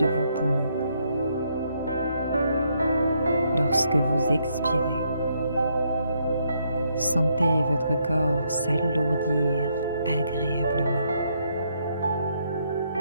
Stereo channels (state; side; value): inverted; both; correlation -0.75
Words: vos poumons. Lorsque vous expirez, sentez votre corps s'alourdir agréablement.